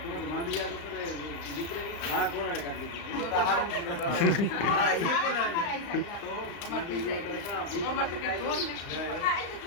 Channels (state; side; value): late; right; 35 ms